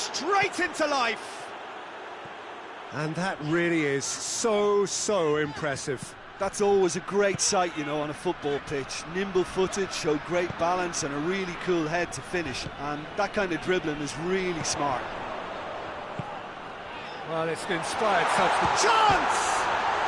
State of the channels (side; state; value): both; identical; correlation 1.00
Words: into life. And that really is so impressive. That's always a great sight, you know, on a football pitch. Nimble-footed, showed great balance and a really cool head to finish. And that kind of dribbling is really smart. Well, it's an inspired substance. Chance!